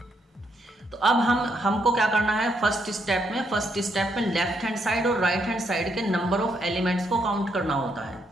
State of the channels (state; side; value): normal; both; correlation 0.76